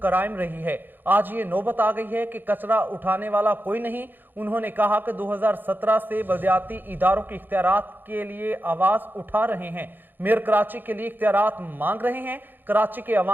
रही है। आज ये नौबत आ गई है कि कचरा उठाने वाला कोई नहीं। उन्होंने कहा कि 2017 से बल्दियाती इदारों के इख्तियारात के लिए आवाज उठा रहे हैं। मेयर कराची के लिए इख्तियारात मांग रहे हैं। कराची के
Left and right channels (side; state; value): left; late; 0.092 ms